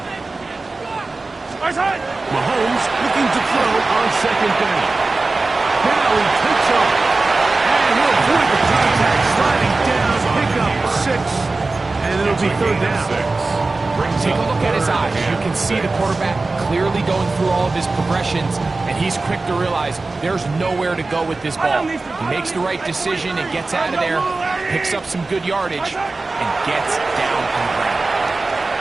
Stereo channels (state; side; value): quieter; left; 3.5 dB